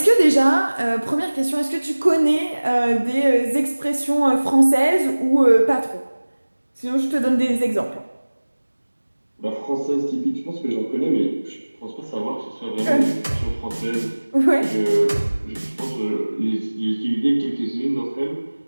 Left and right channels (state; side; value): inverted; both; correlation -1.00